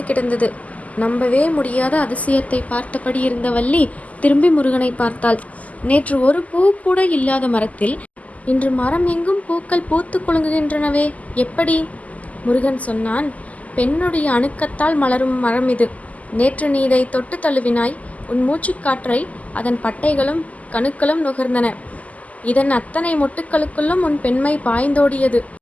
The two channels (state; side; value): late; right; 0.073 ms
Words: கிடந்தது. நம்பவே முடியாத அதிசயத்தை பார்த்தபடி இருந்த வள்ளி திரும்பி முருகனை பார்த்தாள். நேற்று ஒரு பூ கூட இல்லாத மரத்தில் இன்று மரம் எங்கும் பூக்கள் பூத்து குலுங்குகின்றனவே, எப்படி? முருகன் சொன்னான். பெண்ணுடைய அணுக்கத்தால் மலரும் மரம் இது. நேற்று நீ இதை தொட்டு தழுவினாய். உன் மூச்சுக்காற்றை அதன் பட்டைகளும் கணுக்களும் நுகர்ந்தன. இதன் அத்தனை மொட்டுக்களுக்குள்ளும் உன் பெண்மை பாய்ந்தோடியது.